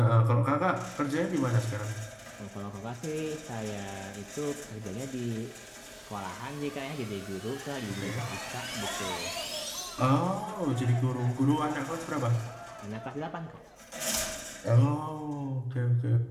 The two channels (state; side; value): identical; both; correlation 1.00